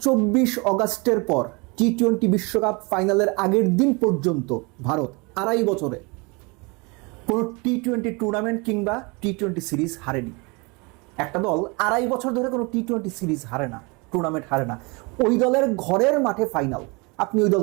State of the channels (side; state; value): left; quieter; 28.6 dB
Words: অগাস্টের পর টি-20 বিশ্বকাপ ফাইনালের আগের দিন পর্যন্ত ভারত 2.5 বছরে কোনো টি-20 টুর্নামেন্ট কিংবা টি-20 সিরিজ হারেনি। একটা দল 2.5 বছর ধরে কোনো টি-20 সিরিজ হারে না, টুর্নামেন্ট হারে না। ওই দলের ঘরের মাঠে ফাইনাল, আপনি ওই